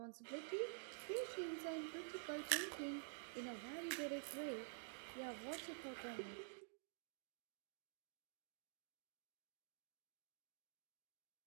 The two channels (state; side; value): silent; left; digital silence